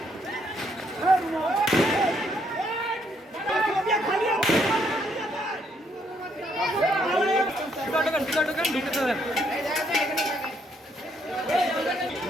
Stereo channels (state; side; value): normal; both; correlation 0.71